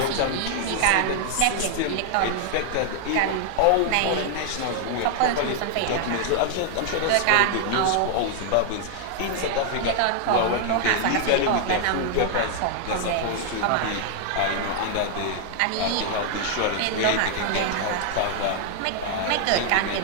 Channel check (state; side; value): different; both; correlation 0.00